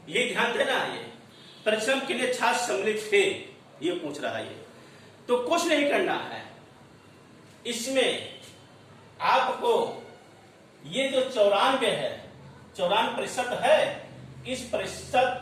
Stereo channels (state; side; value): identical; both; correlation 1.00